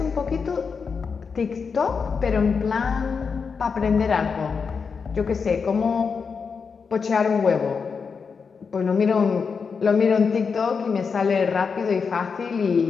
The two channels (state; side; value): quieter; right; 5.5 dB